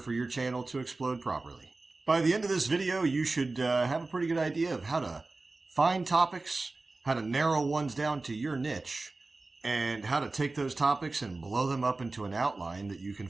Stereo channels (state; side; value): quieter; left; 3.4 dB